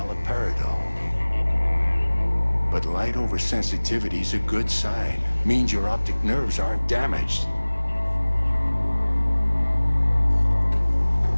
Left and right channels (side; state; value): both; inverted; correlation -1.00